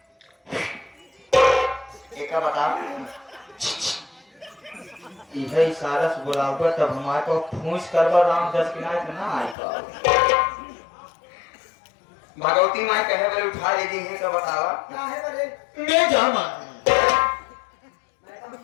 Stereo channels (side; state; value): right; drops out; at 9.6 s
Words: एक बता इहे इशारा से बुलाऊंगा तब हमारे को फूंस करवा राम 10 किनारे से ना आएगा। भगवती मां कहे बोले उठा ले दी है तो बतावा क्या है बरे मैं जामा